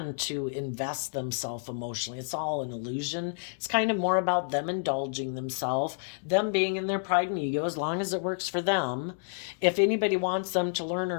to invest themselves emotionally. It's all an illusion. It's kind of more about them indulging themselves, them being in their pride and ego as long as it works for them. If anybody wants them to learn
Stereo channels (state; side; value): silent; right; digital silence